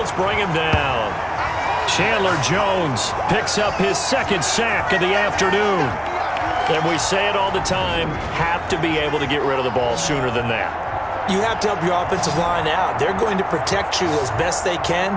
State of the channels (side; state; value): both; identical; correlation 1.00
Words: bring him down. Chandler Jones picks up his 2nd sack of the afternoon. And we say it all the time, have to be able to get rid of the ball sooner than that. You have to help your offensive line out. They're going to protect you as best they